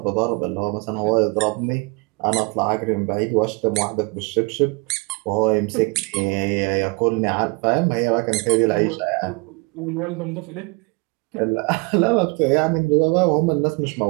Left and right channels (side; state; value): left; quieter; 29.0 dB